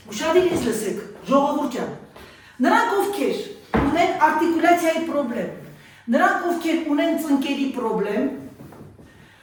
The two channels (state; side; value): identical; both; correlation 1.00